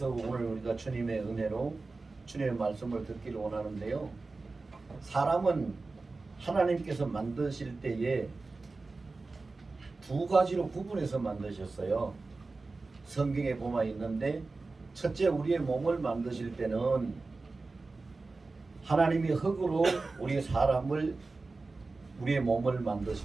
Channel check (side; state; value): left; quieter; 3.7 dB